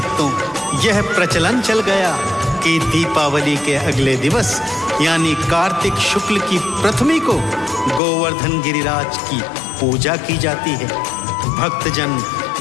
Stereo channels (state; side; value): drops out; right; at 8.0 s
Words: यह प्रचलन चल गया कि दीपावली के अगले दिवस यानी कार्तिक शुक्ल की प्रथमी को गोवर्धन गिरिराज की पूजा की जाती है। भक्तजन